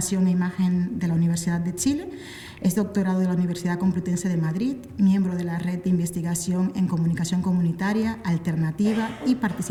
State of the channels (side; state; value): both; identical; correlation 1.00